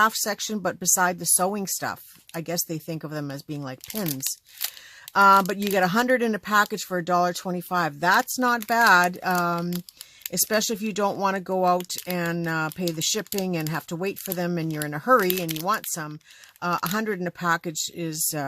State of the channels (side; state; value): both; identical; correlation 1.00